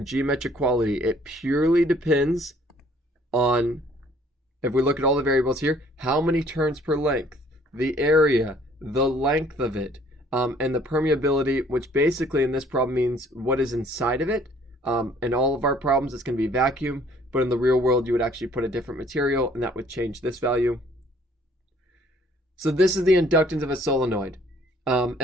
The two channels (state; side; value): normal; both; correlation 0.59